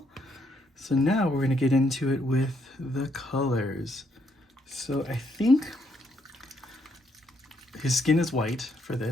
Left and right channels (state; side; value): normal; both; correlation 0.74